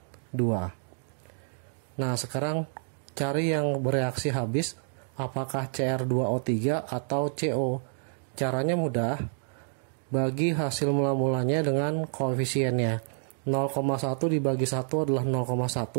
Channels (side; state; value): left; silent; digital silence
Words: Nah, sekarang cari yang bereaksi habis apakah Cr2O3 atau CO. Caranya mudah, bagi hasil mula-mulanya dengan koefisiennya. 0,1 dibagi 1 adalah